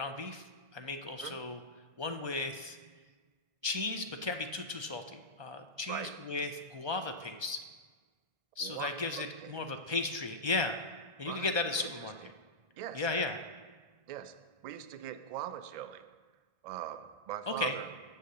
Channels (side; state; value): left; late; 1.2 ms